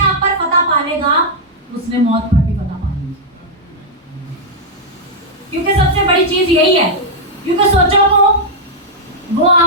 पर पता पालेगा उसने मौत पर भी पता पानी। क्योंकि सबसे बड़ी चीज यही है, क्योंकि सोचो को वो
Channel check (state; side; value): normal; both; correlation -0.04